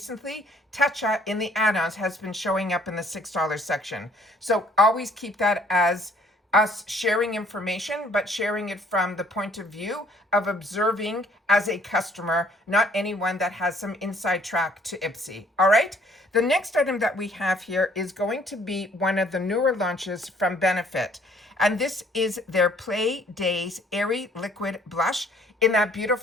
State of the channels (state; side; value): normal; both; correlation 0.60